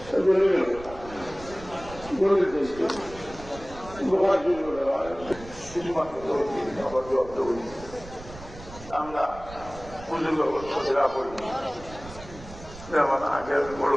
আমরা পুজোর ব্যবস্থা করি। যেমন আগে আমি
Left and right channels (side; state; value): right; noise; rumble, 16 dB below the sound